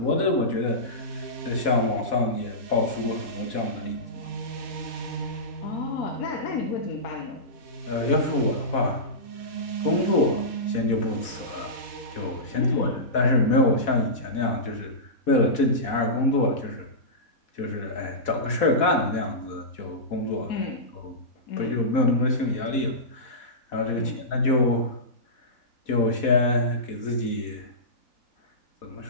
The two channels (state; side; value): late; right; 4.1 ms